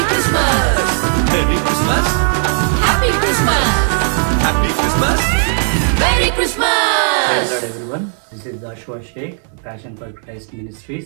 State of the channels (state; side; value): silent; left; digital silence